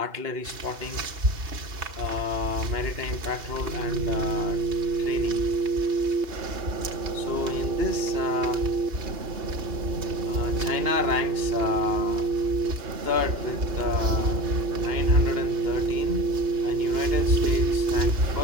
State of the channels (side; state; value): left; late; 2.8 ms